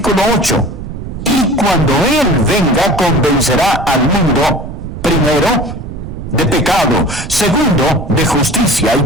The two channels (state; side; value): noise; right; rumble, 9 dB below the sound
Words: 8. Y cuando Él venga, convencerá al mundo, primero, de pecado, segundo, de justicia y